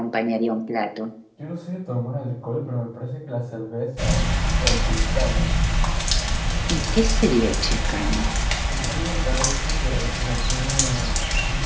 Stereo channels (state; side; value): identical; both; correlation 1.00